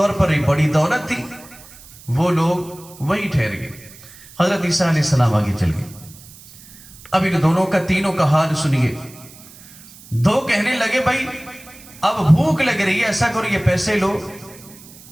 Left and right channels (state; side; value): noise; right; hiss, 21 dB below the sound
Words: پر ایک بڑی دولت تھی، وہ لوگ وہی ٹھہر گئے۔ حضرت عیسیٰ علیہ السلام آگے چل گئے۔ اب ان دونوں کا، تینوں کا حال سنیے۔ دو کہنے لگے بھائی اب بھوک لگ رہی ہے، ایسا کرو یہ پیسے لو،